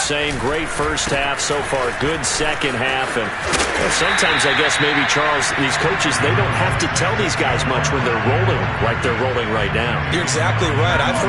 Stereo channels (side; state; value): both; identical; correlation 1.00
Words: Great first half so far. Good second half. And sometimes, I guess, maybe, Charles, these coaches, they don't have to tell these guys much when they're rolling like they're rolling right now. You're exactly right. I've